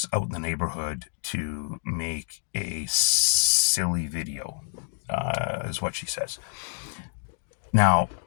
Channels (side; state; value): right; silent; digital silence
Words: out in the neighborhood to make a silly video, is what she says. Now,